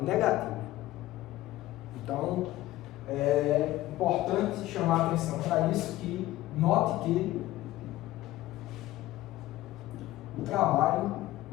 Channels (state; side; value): quieter; right; 16.3 dB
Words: negativo. Então, é importante chamar a atenção para isso, que note que o trabalho